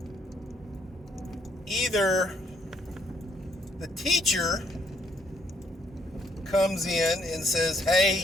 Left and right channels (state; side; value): normal; both; correlation 0.71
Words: either the teacher comes in and says,